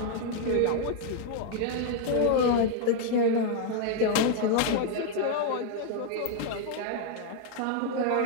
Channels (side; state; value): both; different; correlation 0.00